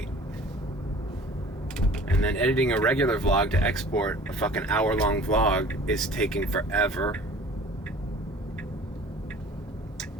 And then editing a regular vlog to export a fucking hour-long vlog is taking forever.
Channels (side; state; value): both; normal; correlation 0.47